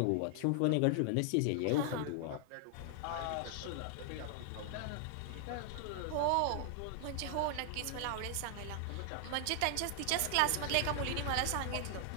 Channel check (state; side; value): different; both; correlation 0.00